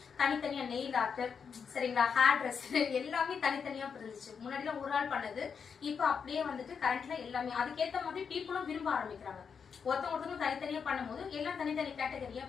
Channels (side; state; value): right; quieter; 6.4 dB